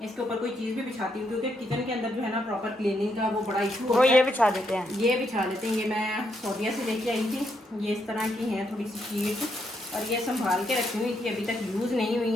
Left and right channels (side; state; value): both; normal; correlation 0.78